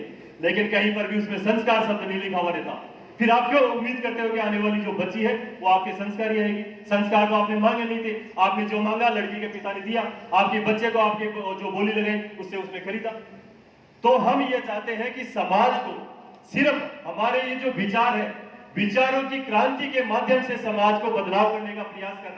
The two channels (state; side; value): identical; both; correlation 1.00